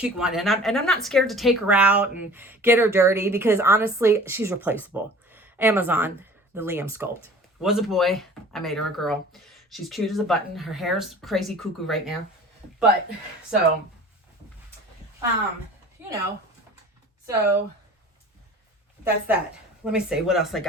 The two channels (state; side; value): normal; both; correlation 0.44